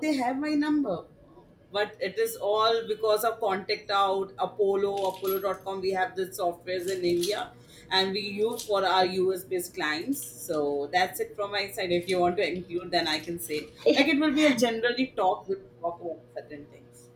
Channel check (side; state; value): both; identical; correlation 1.00